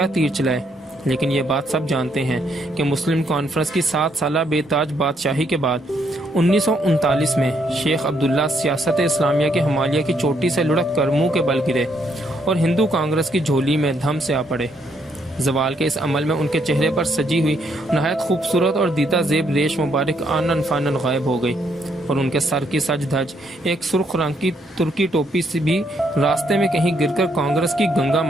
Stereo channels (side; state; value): both; normal; correlation 0.73